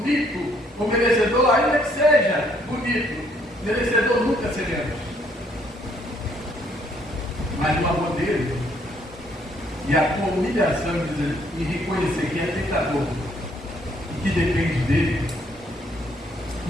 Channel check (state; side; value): normal; both; correlation 0.67